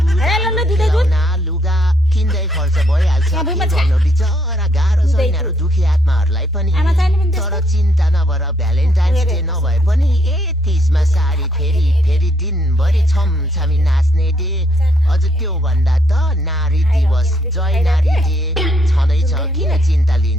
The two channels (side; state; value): both; normal; correlation 0.71